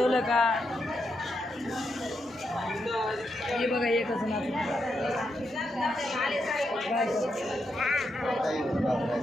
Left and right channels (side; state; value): both; normal; correlation 0.83